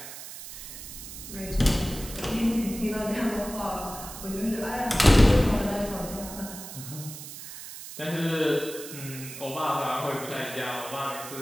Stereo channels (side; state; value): right; noise; hiss, 12 dB below the sound